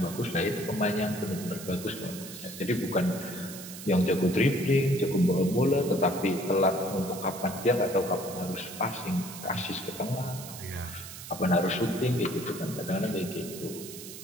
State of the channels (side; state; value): right; noise; hiss, 12 dB below the sound